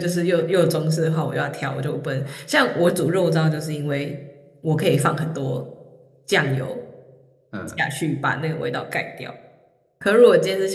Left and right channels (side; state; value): both; identical; correlation 1.00